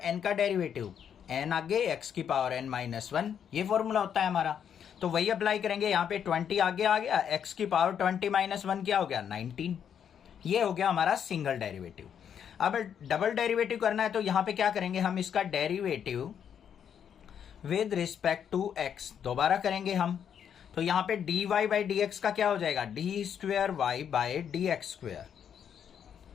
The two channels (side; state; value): right; quieter; 8.4 dB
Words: n का डेरिवेटिव, n आगे x की पावर n माइनस 1, ये फॉर्मूला होता है हमारा। तो वही अप्लाई करेंगे यहाँ पे, 20 आगे आ गया, x की पावर 20 माइनस 1 क्या हो गया 19। ये हो गया हमारा सिंगल डेरिवेटिव। अब डबल डेरिवेटिव करना है, तो यहाँ पे क्या करेंगे हम, इसका derivative with respect to x दोबारा करेंगे हम। तो यहाँ पे dy बाई डी एक्स का क्या हो जाएगा, d square Y by D x square